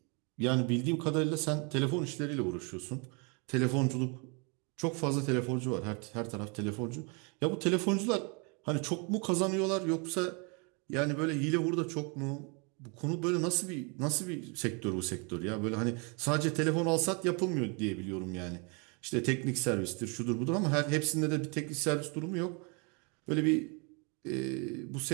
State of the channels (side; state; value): left; quieter; 33.3 dB